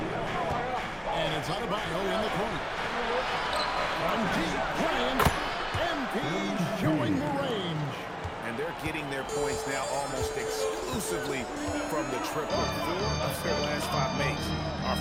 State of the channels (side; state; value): both; identical; correlation 1.00